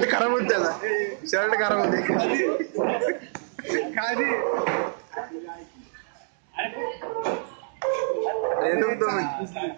खराब होत त्याचा शर्ट खराब होते खाली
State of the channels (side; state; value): left; silent; digital silence